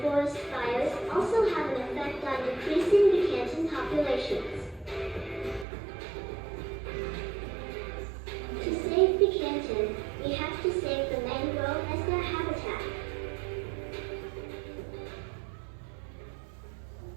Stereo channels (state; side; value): drops out; left; at 5.7 s